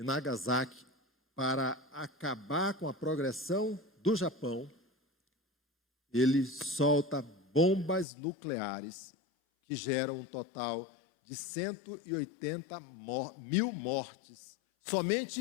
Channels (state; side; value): drops out; right; at 8.1 s